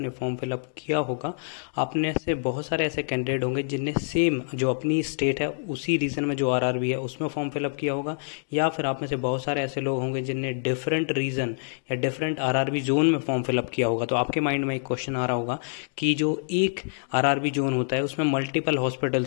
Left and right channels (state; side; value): silent; right; digital silence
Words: फॉर्म फिलअप किया होगा। आपने से बहुत सारे ऐसे कैंडिडेट होंगे जिनने सेम जो अपनी स्टेट है उसी रीजन में जो आरआरबी है उसमें फॉर्म फिलअप किया होगा, या फिर आप में से बहुत सारे ऐसे लोग होंगे जिनने डिफरेंट रीजन या डिफरेंट आरआरबी जोन में फॉर्म फिलअप किया होगा। तो आपके माइंड में एक क्वेश्चन आ रहा होगा कि जो एक आरआरबी जोन होता है उसमें मल्टीपल